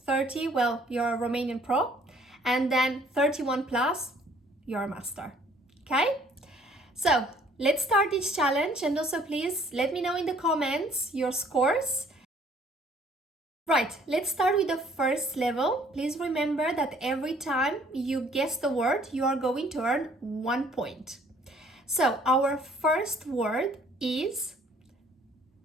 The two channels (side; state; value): both; normal; correlation 0.59